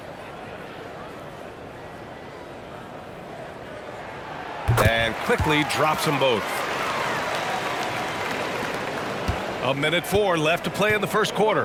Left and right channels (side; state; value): both; identical; correlation 1.00